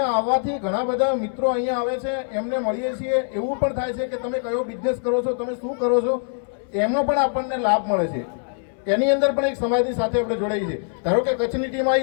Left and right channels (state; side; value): silent; right; 63 dB below the other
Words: આવવાથી ઘણા બધા મિત્રો અહીંયા આવે છે, એમને મળીએ છીએ। એવું પણ થાય છે કે તમે કયો બિઝનેસ કરો છો, તમે શું કરો છો, એનો પણ આપણને લાભ મળે છે। એની અંદર પણ એક સમાજની સાથે આપણે જોડાઈએ છીએ। ધારો કે કચ્છની ટીમ